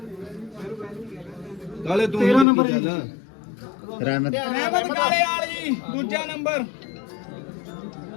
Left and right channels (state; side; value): drops out; right; at 2.5 s